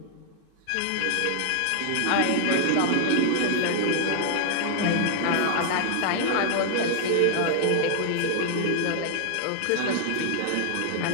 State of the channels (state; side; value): different; both; correlation 0.00